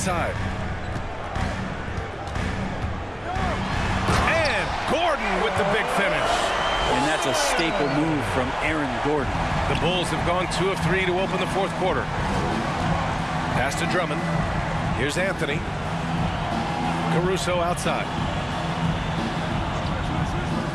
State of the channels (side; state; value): both; identical; correlation 1.00